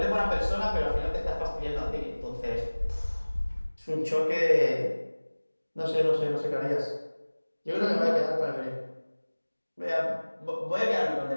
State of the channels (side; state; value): both; inverted; correlation -1.00